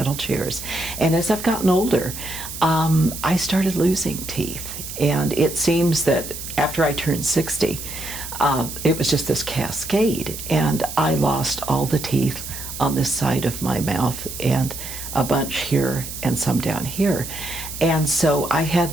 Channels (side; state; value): right; noise; hiss, 9 dB below the sound